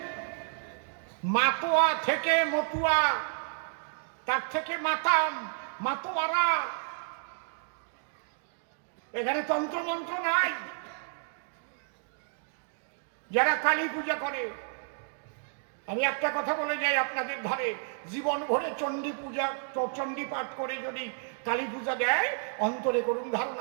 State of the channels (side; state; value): left; silent; digital silence